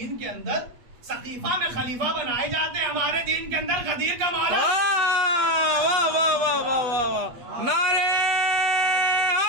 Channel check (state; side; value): late; left; 8.3 ms